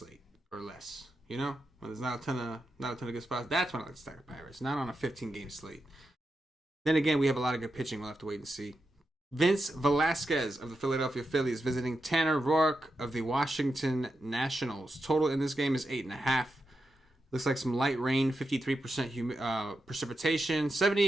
or less. When there's not a ton of good spots, that's when I like to stack the Pirates, not on a 15-game slate. Then again, we have a lot of good pitching. We'll have to wait and see. Vince Velasquez of the Philadelphia Phillies visiting Tanner Roark of the Washington Nationals. Total in this game is 8.5. Looks like some light rain, 53% precipitation,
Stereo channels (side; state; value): both; normal; correlation 0.87